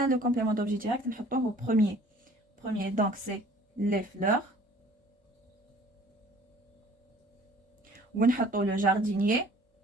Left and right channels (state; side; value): normal; both; correlation 0.52